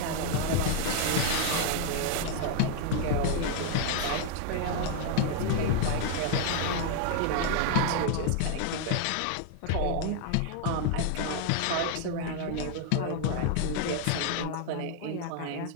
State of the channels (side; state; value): both; different; correlation 0.00